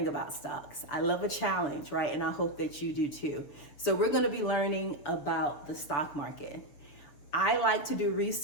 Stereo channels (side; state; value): right; late; 7.2 ms